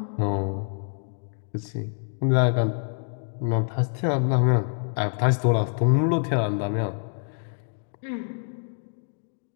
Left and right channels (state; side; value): silent; right; 61 dB below the other